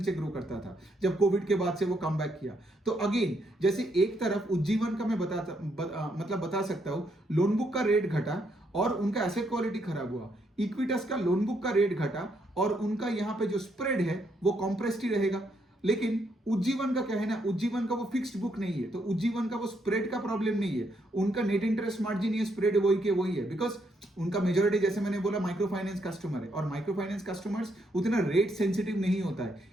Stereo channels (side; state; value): both; normal; correlation 0.75